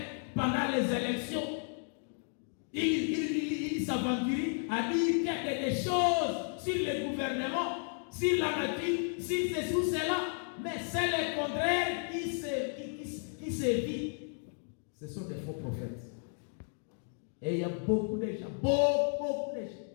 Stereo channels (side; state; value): right; silent; 55 dB below the other